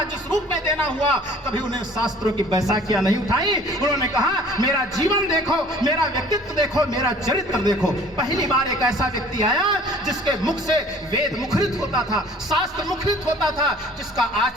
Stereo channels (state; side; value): normal; both; correlation 0.50